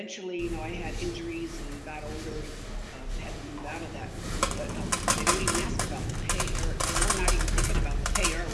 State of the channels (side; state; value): both; identical; correlation 1.00